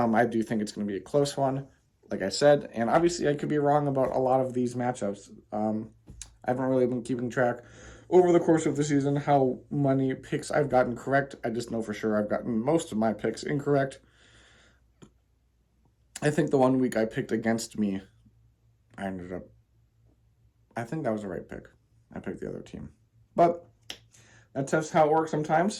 do think it's going to be a close one, like I said. And obviously, I could be wrong about a lot of these matchups. I haven't really been keeping track over the course of the season how many picks I've gotten correct. I just know for sure I've gotten most of my picks incorrect. I think the 1 week I picked against me, I think that was the right pick. I picked the other team. But that's just how it works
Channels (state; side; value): identical; both; correlation 1.00